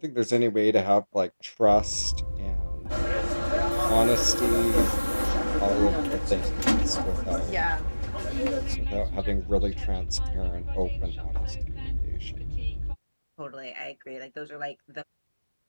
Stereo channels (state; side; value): inverted; both; correlation -1.00